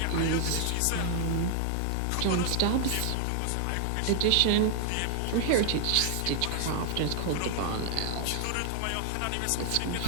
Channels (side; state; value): both; different; correlation 0.00